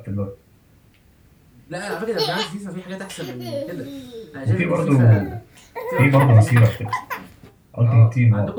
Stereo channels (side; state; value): both; identical; correlation 1.00